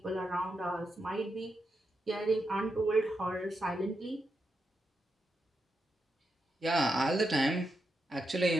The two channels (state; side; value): normal; both; correlation 0.85